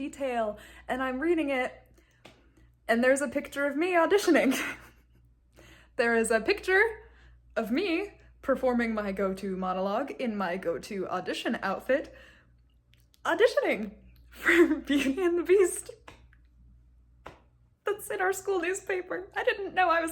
and I'm reading it and there's a picture of me auditioning. There is a picture of me performing my go-to monologue in my go-to audition outfit, auditioning for Beauty and the Beast. That's in our school newspaper. I didn't know I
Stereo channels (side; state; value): both; identical; correlation 1.00